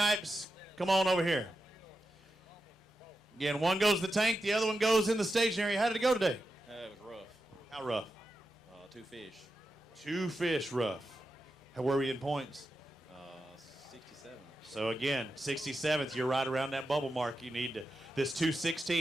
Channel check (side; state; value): both; normal; correlation 0.89